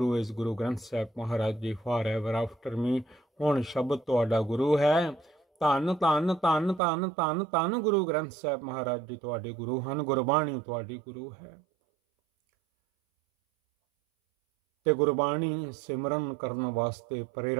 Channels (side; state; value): left; drops out; at 6.8 s